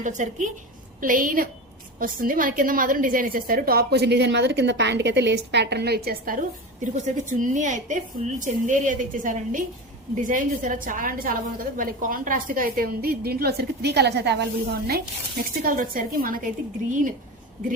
వచ్చరికి ప్లెయిన్ వస్తుంది. మన కింద మాత్రం డిజైన్ ఇచ్చేస్తారు. టాప్ కొంచెం డిజైన్ మాత్రం కింద ప్యాంట్ కి అయితే లేస్ ప్యాటర్న్ లో ఇచ్చేస్తారు. దీనికి వచ్చేసరికి చున్నీ అయితే ఫుల్ చందేరి అయితే ఇచ్చేసారండి. డిజైన్ చూసారా, చాలా అంటే చాలా బాగుంది కదా. మళ్ళీ కాంట్రాస్ట్ గా అయితే ఉంది. దీంట్లో వచ్చరికి 3 కలర్స్ అయితే అవైలబుల్ గా ఉన్నాయి. నెక్స్ట్ కలర్ వచ్చేసరికి మనకైతే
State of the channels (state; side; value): normal; both; correlation 0.26